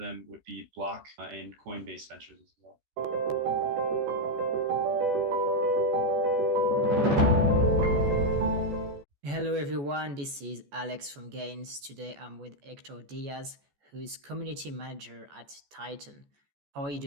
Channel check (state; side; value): late; left; 14 ms